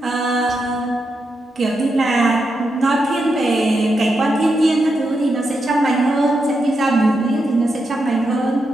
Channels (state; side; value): normal; both; correlation 0.85